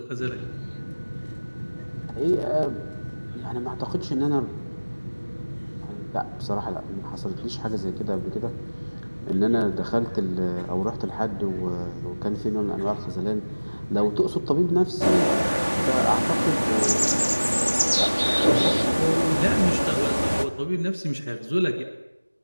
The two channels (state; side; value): inverted; both; correlation -1.00